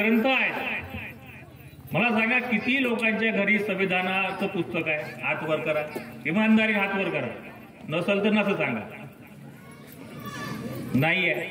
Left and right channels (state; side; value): identical; both; correlation 1.00